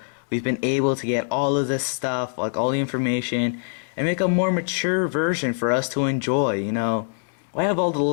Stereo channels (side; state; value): right; silent; 63 dB below the other